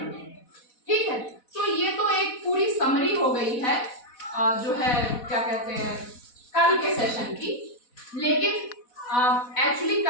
ठीक है। तो ये तो एक पूरी समरी हो गई है जो है क्या कहते हैं कल के सेशन की। लेकिन एक्चुअली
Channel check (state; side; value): late; right; 4.1 ms